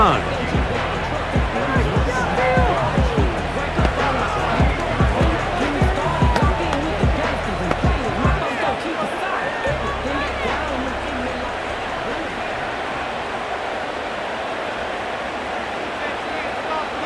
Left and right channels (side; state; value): both; identical; correlation 1.00